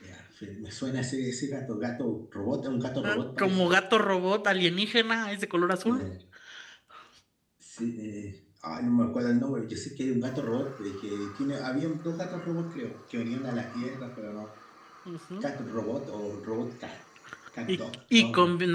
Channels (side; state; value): both; identical; correlation 1.00